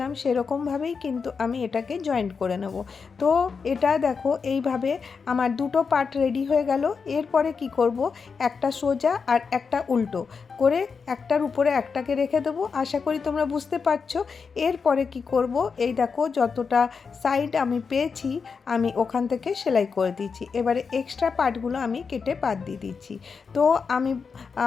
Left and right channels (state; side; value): quieter; right; 5.4 dB